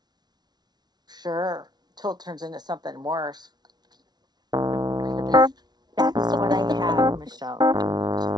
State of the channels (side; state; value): left; late; 0.19 ms